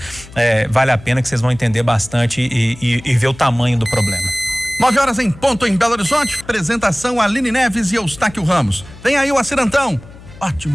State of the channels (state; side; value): noise; left; hum, 19 dB below the sound